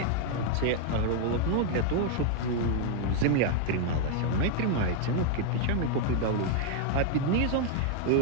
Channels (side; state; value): both; different; correlation 0.00